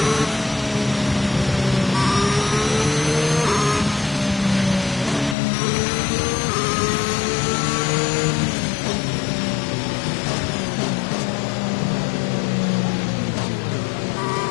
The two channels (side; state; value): right; drops out; at 5.4 s